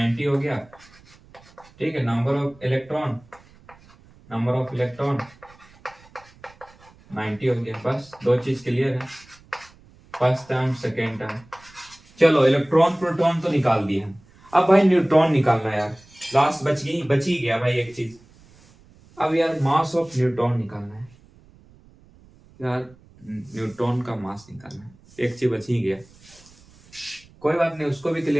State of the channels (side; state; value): right; noise; rumble, 27 dB below the sound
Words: हो गया, ठीक है। Number of electron, number of electron 90 हो गया, बस दो चीज क्लियर है, फर्स्ट टर्म सेकेंड टर्म। चलो इलेक्ट्रॉन प्रोटॉन तो निकाल दिए हम, अब भाई न्यूट्रॉन निकालना है यार। लास्ट बच ही गया भाई एक चीज। अब यार मास ऑफ न्यूट्रॉन निकालना है यार, न्यूट्रॉन का मास निकालना है, एक चीज बच ही गया। कोई बात नहीं, उसको भी